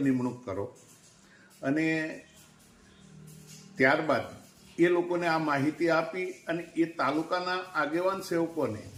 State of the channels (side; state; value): both; identical; correlation 1.00